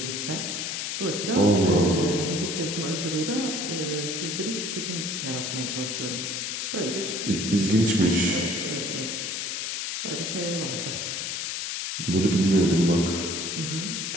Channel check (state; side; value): noise; left; hiss, 3 dB below the sound